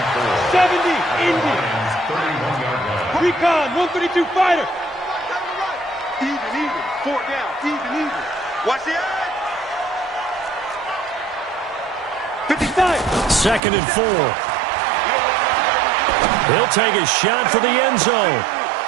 70, Indy. Recon, 132 fighter. Even. 4 down. Even. Watch the eye. 55. 2nd and 4. He'll take a shot for the end zone.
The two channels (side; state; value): left; drops out; at 13.6 s